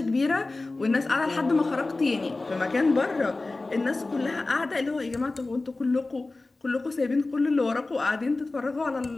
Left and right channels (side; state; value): right; quieter; 3.2 dB